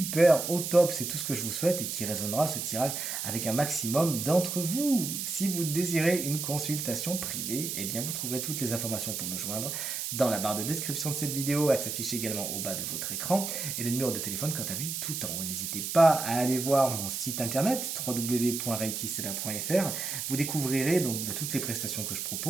au top, c'est tout ce que je vous souhaite et qui résonnera ce tirage avec un maximum d'entre vous. Si vous désirez une consultation privée, eh bien vous trouverez toutes les informations pour me joindre dans la barre de description de cette vidéo, elle s'affiche également au bas de votre écran et le numéro de téléphone quant à lui tout en haut. N'hésitez pas à aller voir mon site internet www.reikisela.fr, vous découvrirez donc toutes les prestations que je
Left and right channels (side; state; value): right; noise; hiss, 3 dB below the sound